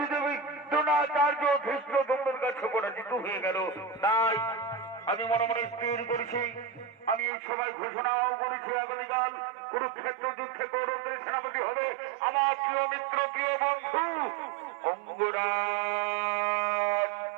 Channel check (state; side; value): drops out; left; at 7.3 s